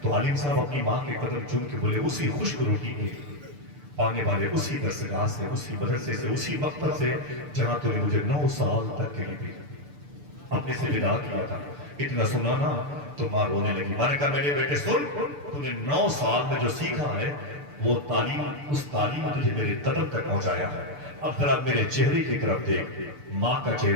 تو عالم صاحب اپنی ماں کے قدم چوم کے بولے اسی خشک روٹی کے پانے والے، اسی درسگاہ سے، اسی مدرسے سے، اسی مکتب سے جہاں تو نے مجھے 9 سال تک کے لیے اپنے سے ودا کیا تھا، اتنا سنا نا تو ماں رونے لگی۔ میں نے کہا میرے بیٹے سن، تو نے 9 سال میں جو سیکھا ہے وہ تعلیم، اس تعلیم نے تجھے میرے قدم تک پہنچایا ہے، اب ذرا میرے چہرے کی طرف دیکھ، ماں کا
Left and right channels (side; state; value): left; late; 6.8 ms